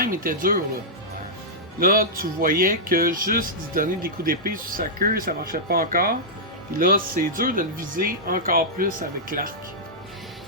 il était dur, là. Là, tu voyais que juste d'y donner des coups d'épée sur sa queue, ça marchait pas encore. Puis là, c'est dur de le viser encore plus avec l'arc.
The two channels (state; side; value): normal; both; correlation -0.11